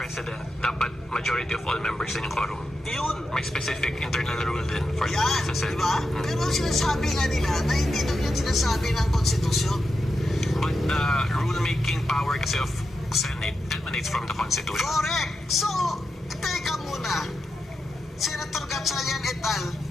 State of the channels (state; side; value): normal; both; correlation 0.88